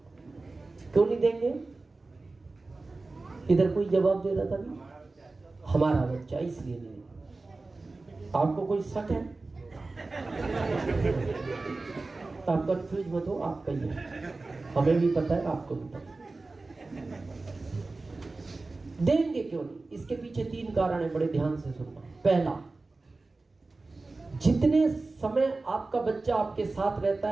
क्यों नहीं देंगे? इधर कोई जवाब दे रहा था नहीं, हमारा बच्चा इसलिए नहीं। आपको कोई शक है? आप कंफ्यूज मत हो, आपका ही है, हमें भी पता है, आपको भी पता है। देंगे क्यों नहीं? इसके पीछे 3 कारण है, बड़े ध्यान से सुनना। पहला, जितने समय आपका बच्चा आपके साथ रहता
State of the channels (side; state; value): left; quieter; 3.4 dB